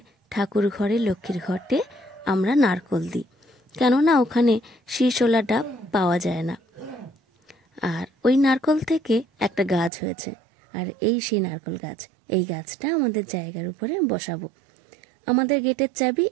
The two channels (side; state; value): left; drops out; at 9.9 s